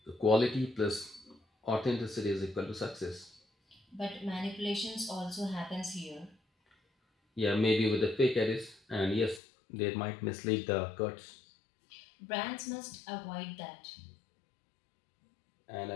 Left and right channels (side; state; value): right; drops out; at 9.4 s